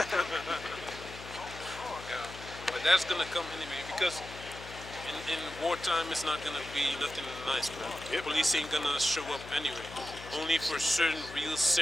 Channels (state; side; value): noise; left; hum, 14 dB below the sound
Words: Yeah. But that's gonna come anyway because in wartime it's not gonna be nothing nice, man. Yep. Police ain't gonna show up anyway. Only for certain real